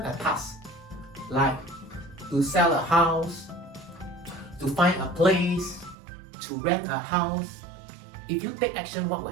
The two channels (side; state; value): left; drops out; at 6.0 s